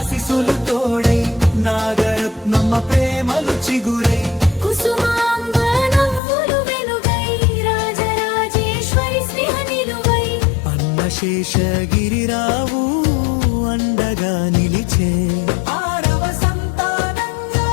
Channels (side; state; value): right; drops out; at 6.2 s